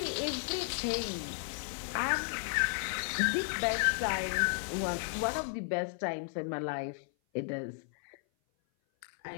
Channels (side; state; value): right; silent; 55 dB below the other